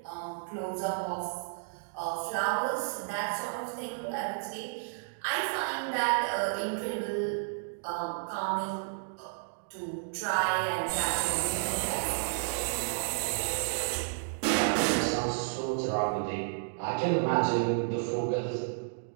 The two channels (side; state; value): left; silent; digital silence